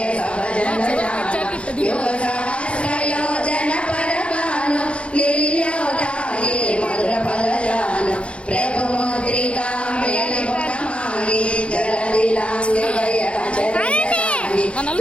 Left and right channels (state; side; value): late; right; 0.060 ms